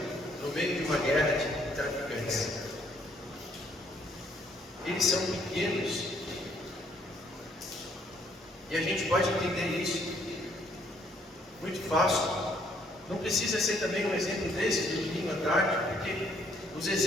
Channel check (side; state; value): both; normal; correlation 0.66